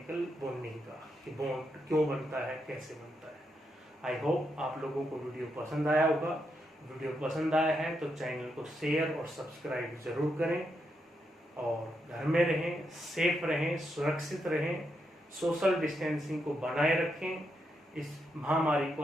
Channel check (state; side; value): normal; both; correlation 0.82